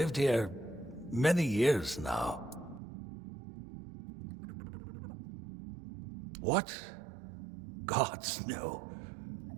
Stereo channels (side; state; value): left; drops out; at 2.8 s